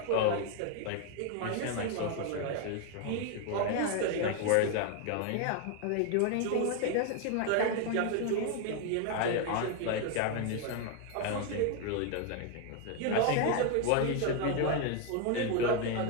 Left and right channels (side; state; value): both; different; correlation 0.01